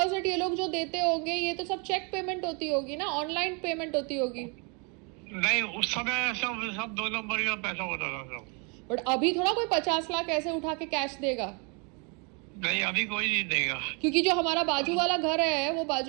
ये लोग जो देते होंगे, ये तो सब चेक पेमेंट होती होगी ना, ऑनलाइन पेमेंट होती होगी? नहीं, उस समय सब 2 नंबर का पैसा होता था सब। बट अभी थोड़ा कोई 50 लाख ऐसे उठा के कैश देगा। नहीं, अभी कोई नहीं देगा। क्योंकि जो हमारा बाजू वाला घर है, वो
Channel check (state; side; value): quieter; left; 33.6 dB